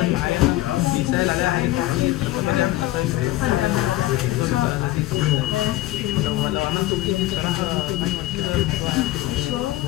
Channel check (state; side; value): quieter; right; 16.3 dB